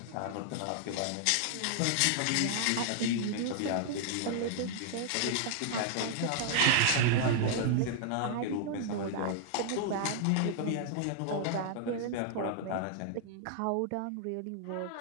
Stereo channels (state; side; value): different; both; correlation -0.01